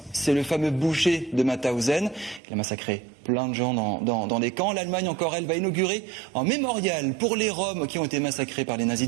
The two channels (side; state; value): left; drops out; at 2.4 s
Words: C'est le fameux boucher de Mauthausen. Il a massacré plein de gens dans des camps. L'Allemagne, encore elle, va inaugurer un mémorial pour les Roms qui ont été massacrés par les nazis